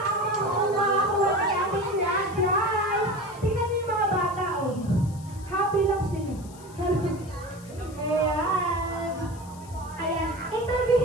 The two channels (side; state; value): left; noise; hiss, 22 dB below the sound